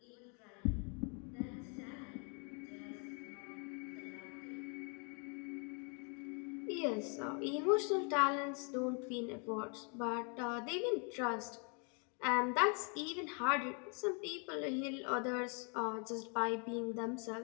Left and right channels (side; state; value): right; quieter; 37.1 dB